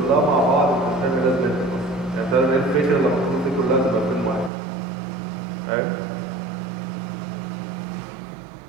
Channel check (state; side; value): drops out; left; at 4.5 s